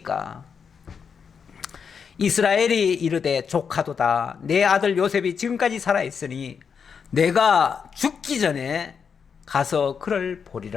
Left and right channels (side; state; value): right; quieter; 6.4 dB